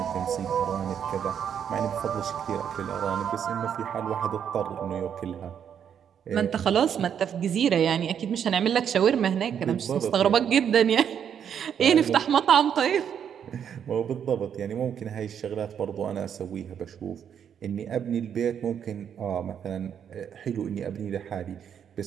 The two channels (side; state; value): left; quieter; 8.4 dB